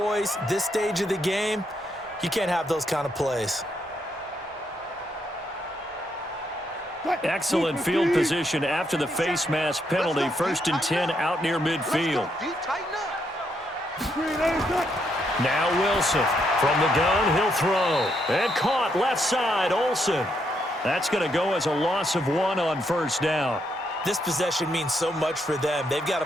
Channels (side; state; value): both; normal; correlation 0.77